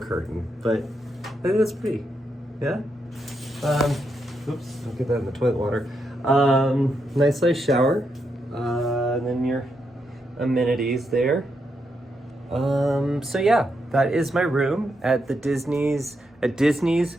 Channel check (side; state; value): both; normal; correlation 0.82